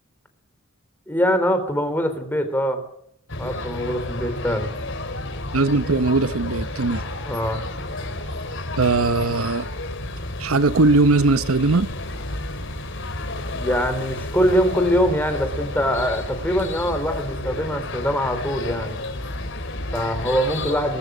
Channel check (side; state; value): both; normal; correlation 0.46